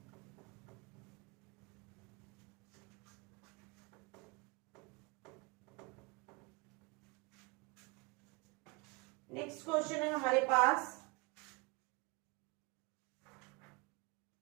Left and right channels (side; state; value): left; quieter; 27.7 dB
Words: नेक्स्ट क्वेश्चन है हमारे पास,